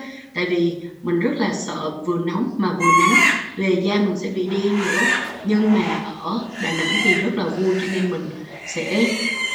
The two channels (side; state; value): both; identical; correlation 1.00